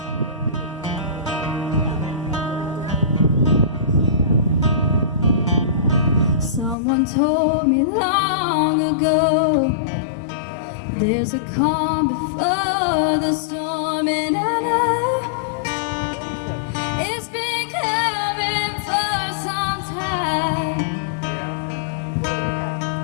Someone told me long ago, there's a calm before the storm, and I know it's been coming for some time.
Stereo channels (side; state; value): right; drops out; at 6.8 s